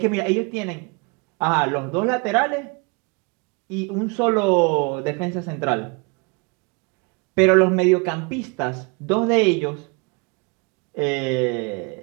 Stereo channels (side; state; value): left; quieter; 30.8 dB